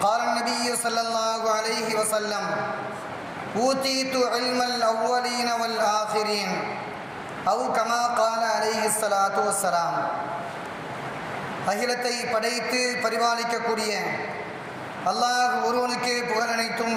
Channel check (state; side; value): identical; both; correlation 1.00